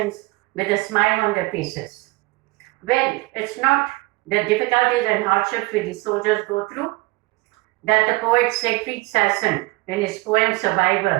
with a smile on their faces. Well, it's not the difficulties and hardships which the soldiers go through that the poet Seigfried Sasson, in his poem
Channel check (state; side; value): quieter; left; 22.7 dB